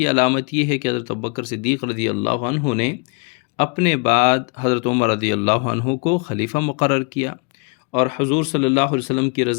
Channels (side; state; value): right; quieter; 33.3 dB